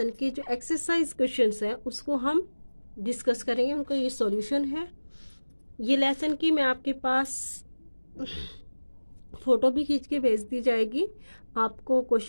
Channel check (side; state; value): both; inverted; correlation -1.00